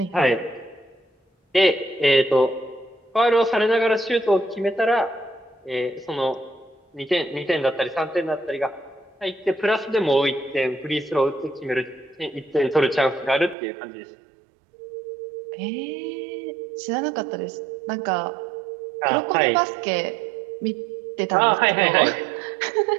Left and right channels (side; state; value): left; drops out; at 13.6 s